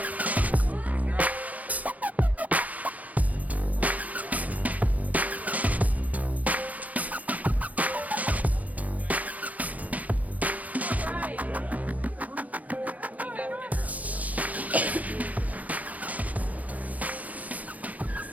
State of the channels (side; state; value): left; late; 0.075 ms